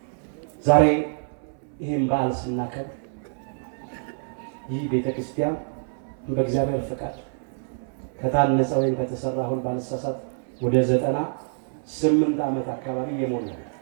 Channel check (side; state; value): left; silent; 61 dB below the other